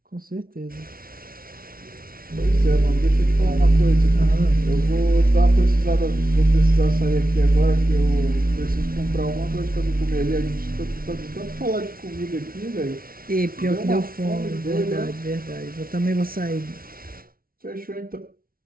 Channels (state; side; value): late; left; 0.43 ms